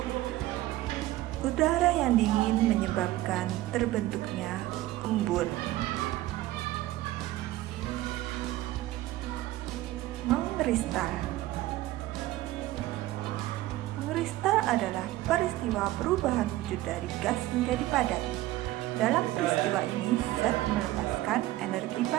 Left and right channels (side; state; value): left; quieter; 16.3 dB